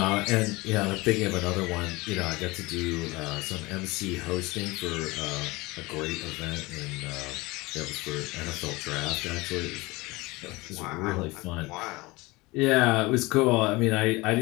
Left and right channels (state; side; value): quieter; right; 22.4 dB